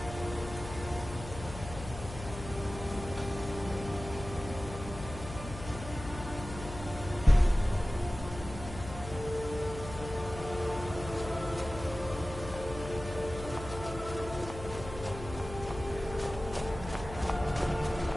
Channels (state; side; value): noise; left; hum, 11 dB below the sound